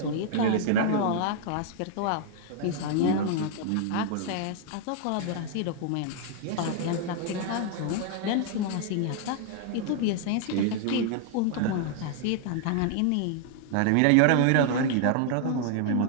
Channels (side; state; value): both; different; correlation 0.00